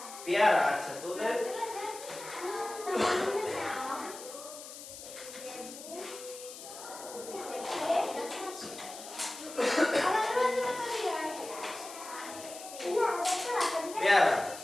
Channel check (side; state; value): left; noise; hiss, 13 dB below the sound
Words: পেয়ারা, আচ্ছা, তোদের পেয়ারা,